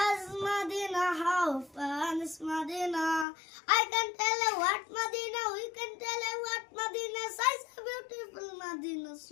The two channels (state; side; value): drops out; right; at 3.2 s